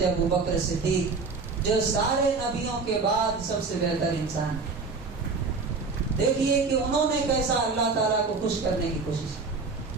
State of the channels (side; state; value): left; quieter; 4.3 dB